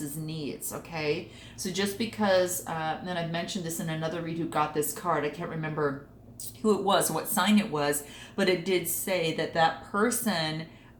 needs, okay? So just because, and I've mentioned this in another read who got this card, I can't remember who it was, what sign it was, but it did say that that person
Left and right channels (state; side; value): identical; both; correlation 1.00